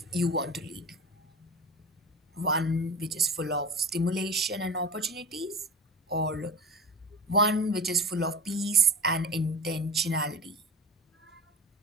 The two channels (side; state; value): both; normal; correlation 0.30